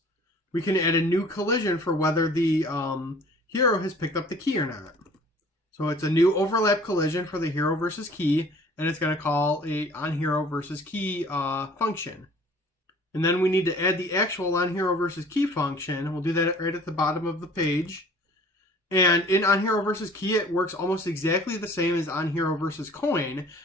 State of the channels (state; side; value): normal; both; correlation 0.50